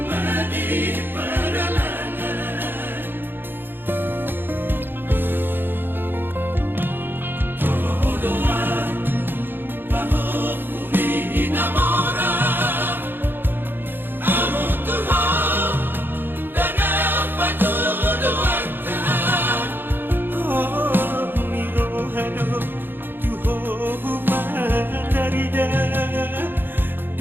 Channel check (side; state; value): left; late; 0.098 ms